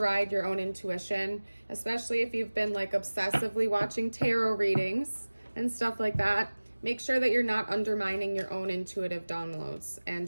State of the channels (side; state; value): both; inverted; correlation -1.00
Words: your own intuition, especially if you've been like obsessively watching tarot readings and stuff like that. Make sure that you're not undermining your own intuitive downloads